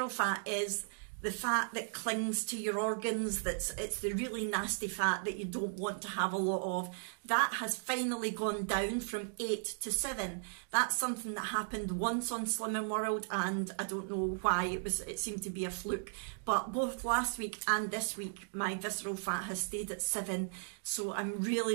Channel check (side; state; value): left; silent; digital silence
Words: fat is the fat that clings to your organs, it's the really nasty fat that you don't want to have a lot of. That has finally gone down from 8 to 7. That's something that happened once on Slimming World, and I don't know why, it seemed to be a fluke. But both last week and this week, my visceral fat has stayed at 7. So I'm